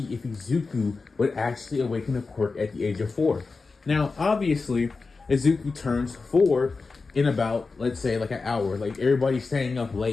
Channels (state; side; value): quieter; right; 4.2 dB